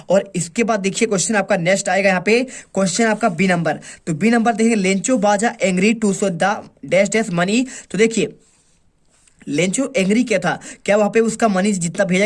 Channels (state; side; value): identical; both; correlation 1.00